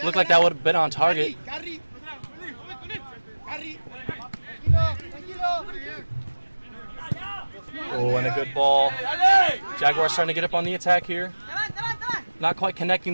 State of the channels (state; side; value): inverted; both; correlation -1.00